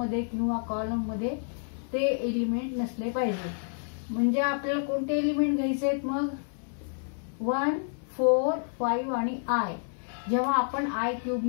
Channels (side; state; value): right; silent; 56 dB below the other